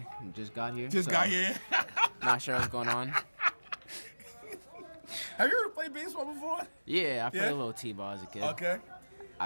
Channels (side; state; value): both; inverted; correlation -1.00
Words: just got here. Got here. Not sure what's going on. Have you ever played baseball before? Yeah, I played a little T-ball as a kid. Okay.